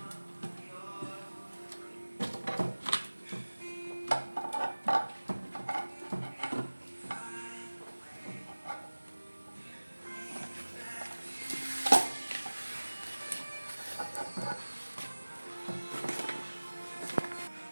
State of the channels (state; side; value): inverted; both; correlation -1.00